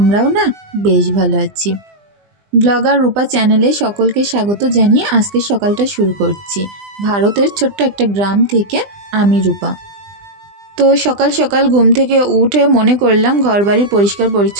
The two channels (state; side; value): late; left; 20 ms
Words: না বেশ ভালো আছি। ব্লগার রূপা চ্যানেলে সকলকে স্বাগত জানিয়ে আজকের সকালটা শুরু করছি ভারতের ছোট্ট একটা গ্রাম থেকে। আমি রূপা। তো সকাল সকাল ঘুম থেকে উঠে মনে করলাম ঘরবাড়ির পরিষ্কার